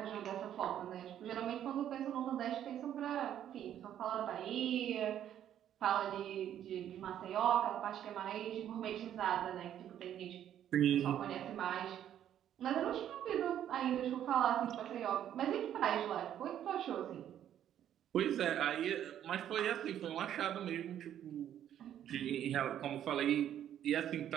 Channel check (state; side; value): quieter; left; 10.6 dB